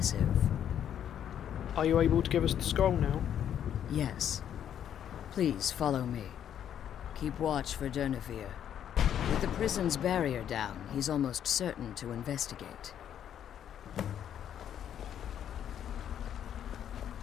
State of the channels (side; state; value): right; quieter; 9.7 dB